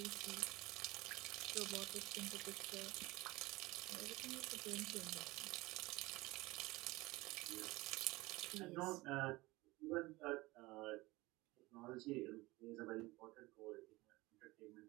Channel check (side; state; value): left; quieter; 20.9 dB